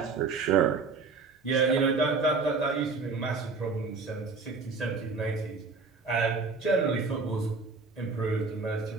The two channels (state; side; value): quieter; left; 4.3 dB